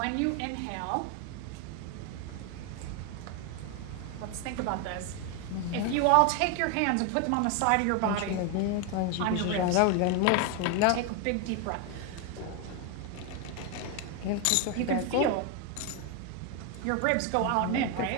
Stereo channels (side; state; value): both; different; correlation 0.01